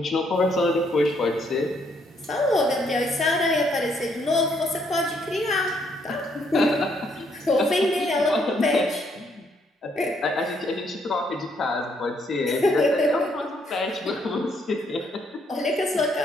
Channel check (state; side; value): normal; both; correlation 0.71